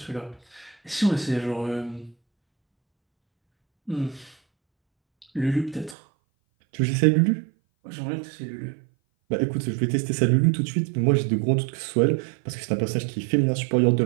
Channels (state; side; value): drops out; left; at 6.0 s